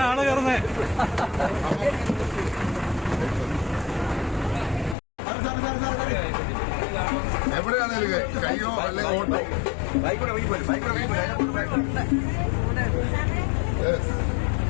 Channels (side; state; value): right; drops out; at 5.0 s